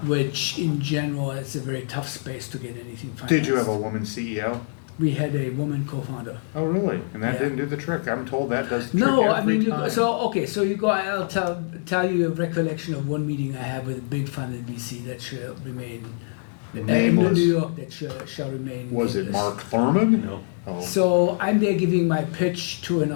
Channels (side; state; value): right; silent; 59 dB below the other